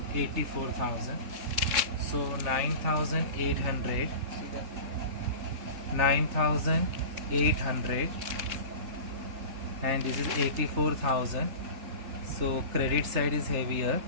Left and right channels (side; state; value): left; late; 3.4 ms